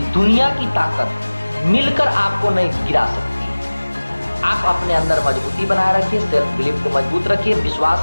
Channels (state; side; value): inverted; both; correlation -1.00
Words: दुनिया की ताकत मिलकर आपको नहीं गिरा सकती है। आप अपने अंदर मजबूती बनाए रखिए, सेल्फ बिलीफ को मजबूत रखिए,